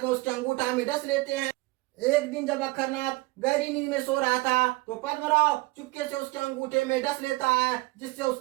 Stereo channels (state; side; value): quieter; left; 22.7 dB